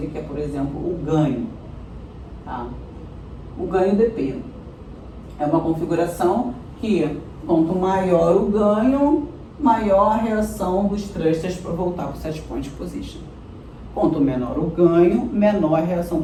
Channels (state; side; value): identical; both; correlation 1.00